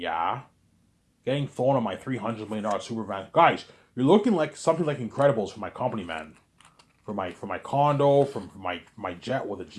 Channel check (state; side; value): identical; both; correlation 1.00